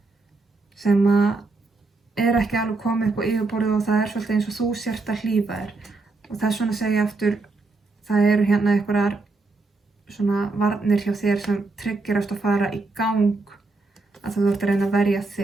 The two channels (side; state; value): left; quieter; 3.6 dB